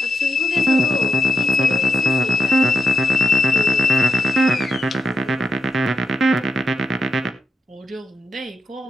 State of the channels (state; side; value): normal; both; correlation 0.85